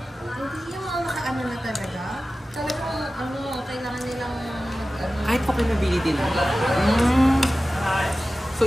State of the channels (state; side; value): normal; both; correlation 0.95